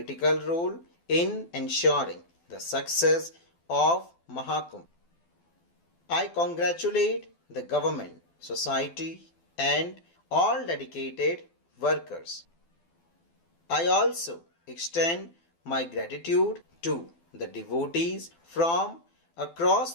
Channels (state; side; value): late; right; 12 ms